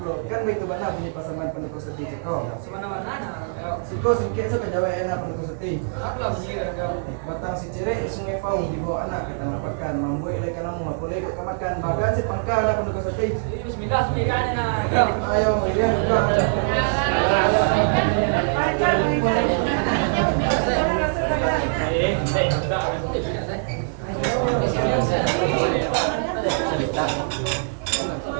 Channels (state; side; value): silent; left; 57 dB below the other